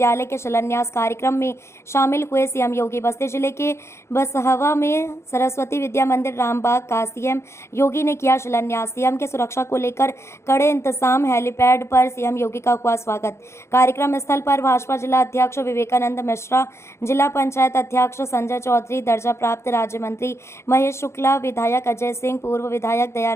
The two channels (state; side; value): late; right; 0.13 ms